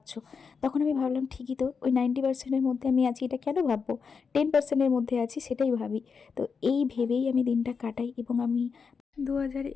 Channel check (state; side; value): quieter; right; 5.6 dB